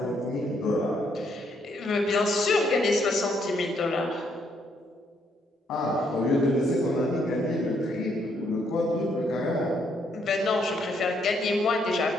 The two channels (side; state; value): both; normal; correlation 0.72